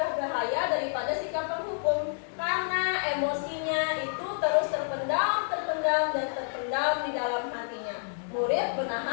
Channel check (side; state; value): right; silent; 59 dB below the other